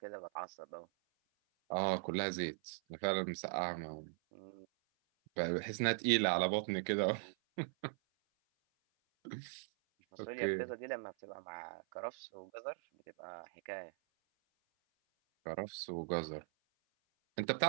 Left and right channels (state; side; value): silent; left; 51 dB below the other